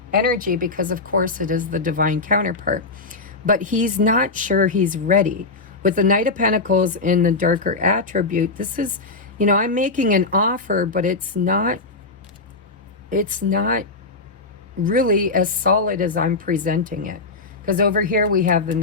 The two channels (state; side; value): quieter; right; 3.7 dB